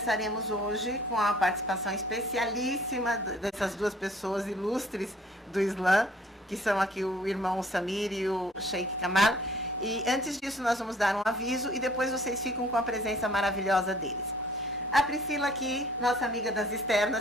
hoje com a participação especialíssima dessas duas pessoas ilustres do Islã, que são aqui o irmão Samir e o Sheikh Kamal. E antes disso nós vamos dar um aviso e depois vocês ficam com a presença maravilhosa deles. A Priscila aqui, nossa amiga das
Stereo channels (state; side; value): normal; both; correlation 0.55